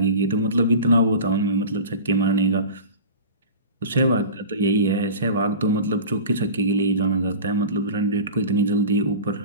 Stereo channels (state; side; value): inverted; both; correlation -0.35